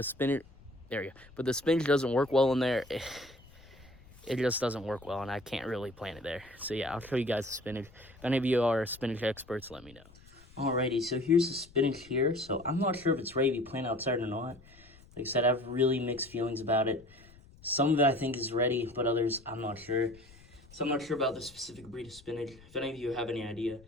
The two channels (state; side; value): noise; left; rumble, 24 dB below the sound